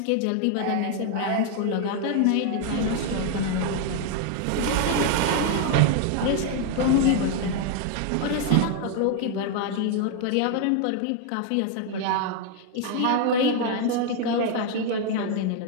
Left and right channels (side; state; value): both; different; correlation 0.00